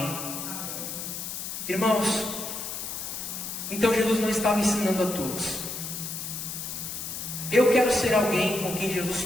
Irmãos, então Jesus não estava ensinando a todos. Eu quero ser alguém com quem Jesus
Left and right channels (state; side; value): noise; left; hiss, 6 dB below the sound